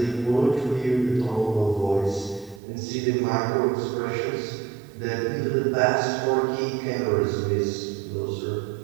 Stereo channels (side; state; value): left; drops out; at 2.6 s